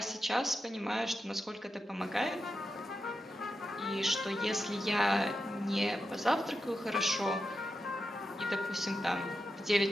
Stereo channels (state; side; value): normal; both; correlation 0.89